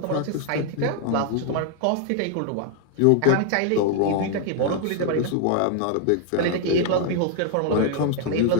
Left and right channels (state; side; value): different; both; correlation 0.00